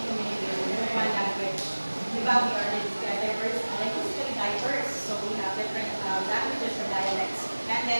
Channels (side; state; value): both; inverted; correlation -1.00